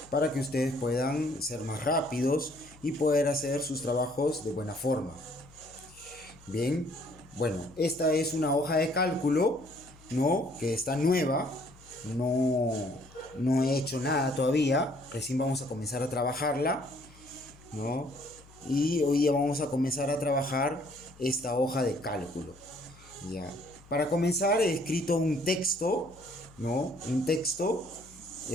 para que ustedes puedan ser más rápidos y poder hacer sus trabajos de buena forma. Bien, bueno, esta es una hoja de cálculo, ¿no? Que está nueva, no, no he hecho nada todavía, recién vamos a comenzar a trabajarla, ¿no? Y hoy día vamos a comenzar a trabajar esta hoja de cálculo, ¿ya? Para comenzar he escrito un texto, ¿no? Un texto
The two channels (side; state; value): left; noise; hum, 24 dB below the sound